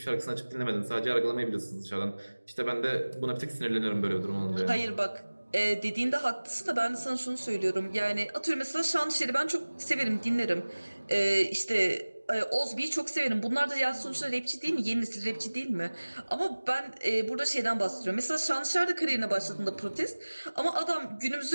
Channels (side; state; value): both; inverted; correlation -1.00